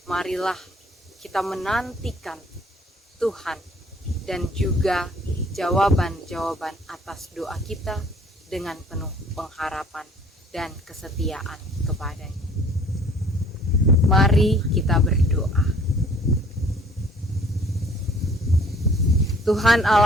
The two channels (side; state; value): both; normal; correlation 0.55